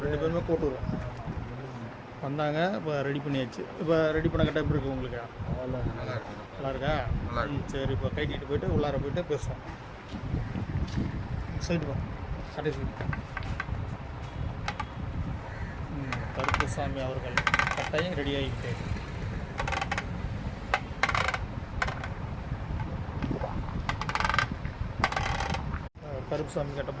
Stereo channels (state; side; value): identical; both; correlation 1.00